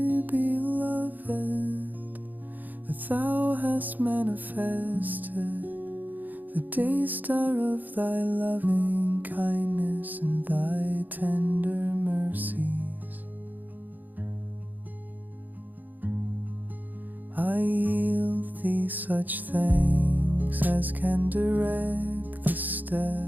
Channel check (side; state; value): left; late; 0.084 ms